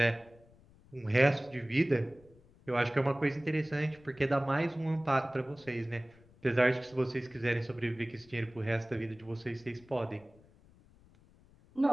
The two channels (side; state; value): left; noise; rumble, 27 dB below the sound